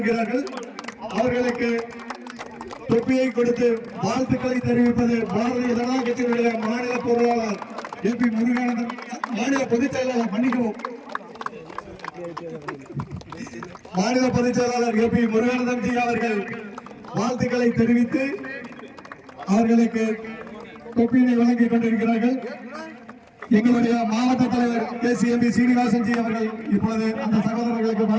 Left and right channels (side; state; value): both; identical; correlation 1.00